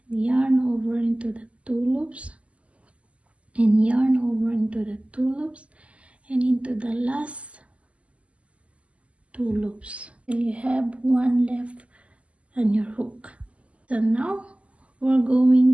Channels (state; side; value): late; left; 0.062 ms